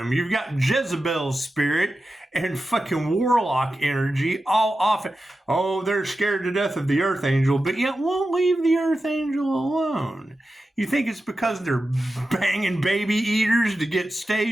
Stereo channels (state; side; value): normal; both; correlation 0.92